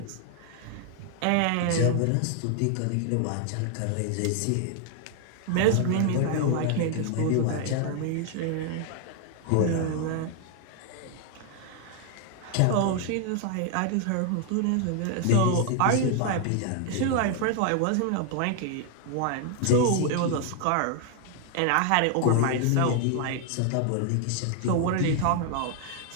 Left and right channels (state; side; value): different; both; correlation 0.00